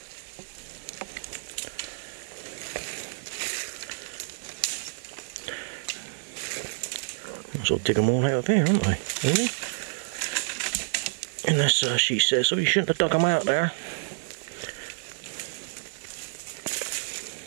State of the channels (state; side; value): silent; left; digital silence